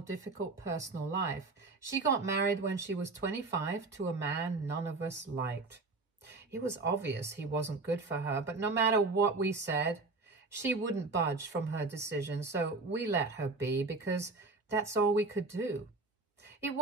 personal life. She got married when she was 25 to a man none of us liked. It was obvious he wasn't good for her, but no matter what we said, she wouldn't budge from her decision, so we let her be because that's all we could do. It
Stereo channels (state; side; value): quieter; left; 3.6 dB